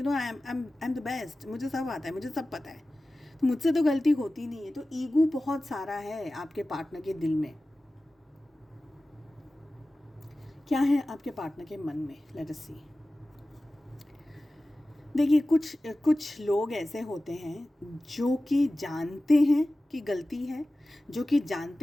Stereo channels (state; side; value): normal; both; correlation 0.96